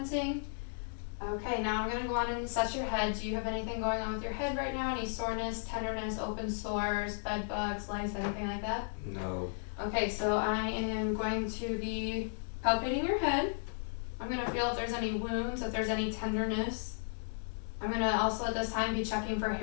Okay, now I'm gonna go on and assess your head. Do you have anything going on with your head right now? Any soreness, tenderness, open sores, bed bugs, lice, anything like that? No. Okay, so I am going to be palpating your head. I'm gonna feel if there's any wounds, if there's any tenderness. I'm gonna also at this time be checking for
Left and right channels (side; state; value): right; silent; digital silence